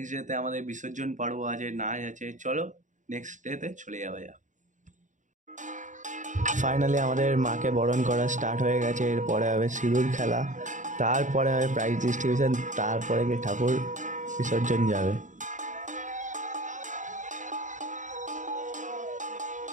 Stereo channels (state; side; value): late; left; 0.36 ms